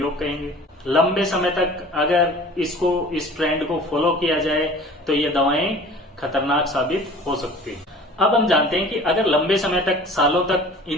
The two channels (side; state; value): both; normal; correlation 0.45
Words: कहेंगे। लंबे समय तक अगर इस ट्रेंड को फॉलो किया जाए तो ये दवाएं खतरनाक साबित हो सकती है। अब हम जानते हैं कि अगर लंबे समय तक, सालों तक